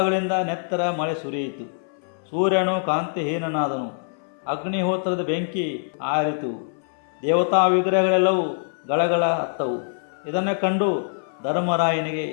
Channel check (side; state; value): right; silent; 63 dB below the other